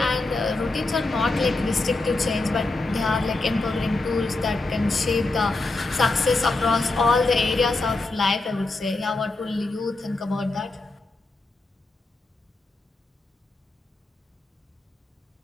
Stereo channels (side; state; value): right; quieter; 3.2 dB